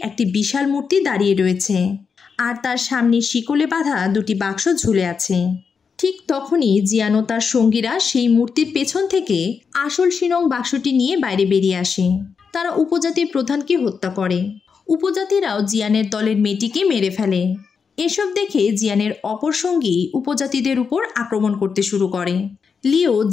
একটি বিশাল মূর্তি দাঁড়িয়ে রয়েছে আর তার সামনে শিকলে বাঁধা দুটি বাক্স ঝুলে আছে। ঠিক তখনই জিয়ান ও তার সঙ্গীরা সেই মূর্তির পেছন থেকে আসল শিনং বাক্সটি নিয়ে বাইরে বেরিয়ে আসে। তারা উপজাতির প্রধানকে হত্যা করে। উপজাতিরাও জিয়ানের দলের মেয়েটিকে মেরে ফেলে। এসব দেখে জিয়ানের অপর সঙ্গী উপজাতিদের উপর আক্রমণ করতে শুরু করে। লিও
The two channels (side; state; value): right; quieter; 5.8 dB